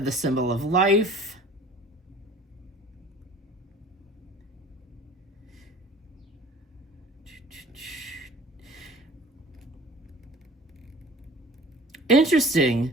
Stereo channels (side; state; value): both; normal; correlation 0.46